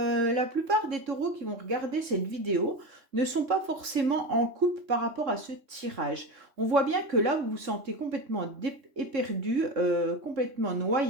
plupart des taureaux qui vont regarder cette vidéo ne sont pas forcément en couple par rapport à ce tirage. On voit bien que là, vous vous sentez complètement éperdu, complètement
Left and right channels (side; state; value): left; late; 3.3 ms